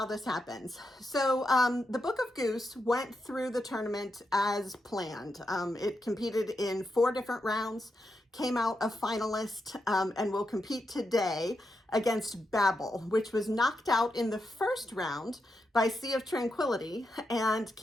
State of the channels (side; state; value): both; normal; correlation 0.85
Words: this happens. So the Book of Goose went through the tournament as planned. It competed in 4 different rounds, came out a finalist, and will compete today against Babel, which was knocked out in the first round by Sea of Tranquility and